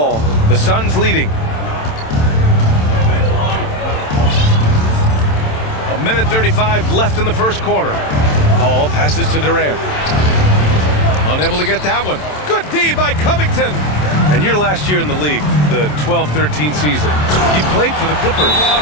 The Suns leading. A minute 35 left in the first quarter. Paul passes to Durant. Unable to get that one. Good D by Covington. And your last year in the league, the 12-13 season, you played for the Clippers.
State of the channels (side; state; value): right; late; 27 ms